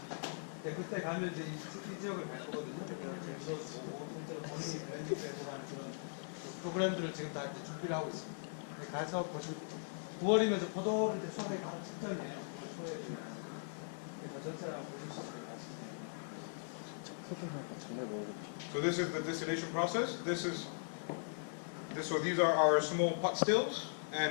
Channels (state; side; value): silent; right; digital silence